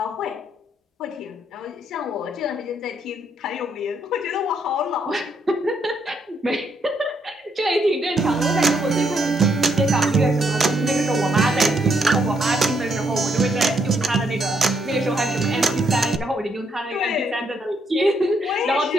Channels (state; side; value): normal; both; correlation 0.74